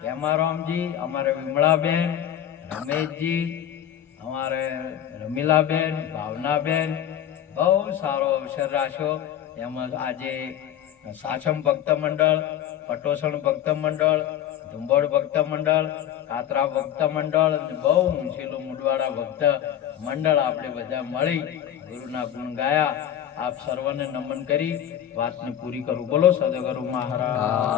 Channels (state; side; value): quieter; right; 10.6 dB